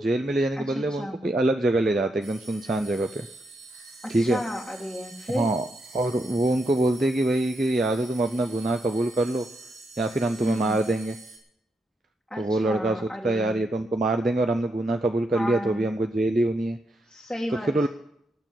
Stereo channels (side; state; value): both; normal; correlation 0.81